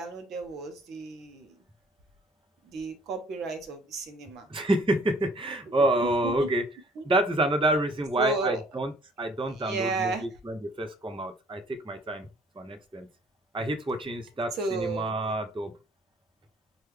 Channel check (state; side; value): normal; both; correlation 0.58